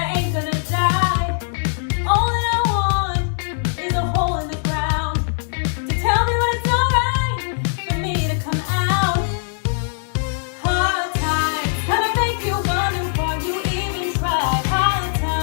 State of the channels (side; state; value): right; silent; digital silence